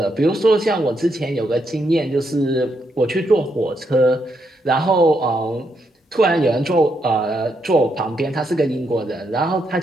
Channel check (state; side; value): normal; both; correlation 0.79